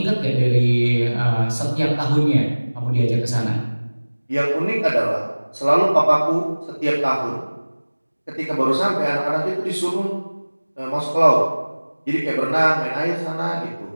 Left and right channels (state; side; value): inverted; both; correlation -1.00